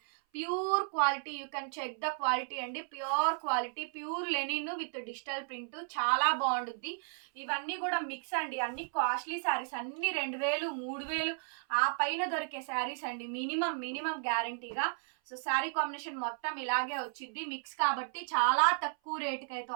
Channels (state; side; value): silent; left; 55 dB below the other